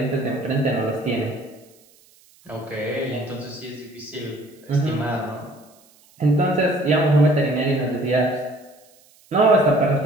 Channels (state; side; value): noise; right; hiss, 30 dB below the sound